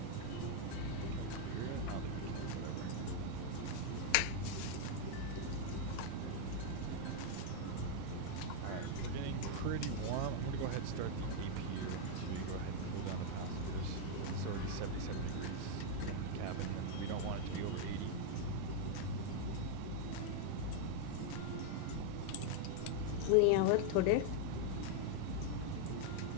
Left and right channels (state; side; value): different; both; correlation 0.00